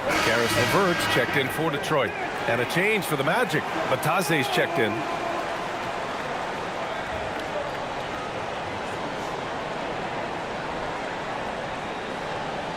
Caris LeVert's checked in for Detroit. And a change for the Magic. Bataze's checked in.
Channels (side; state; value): both; identical; correlation 1.00